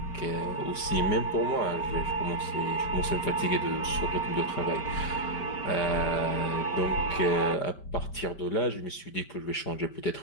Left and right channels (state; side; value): late; right; 5.1 ms